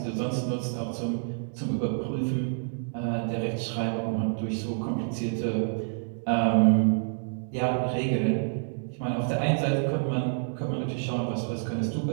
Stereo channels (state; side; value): silent; left; digital silence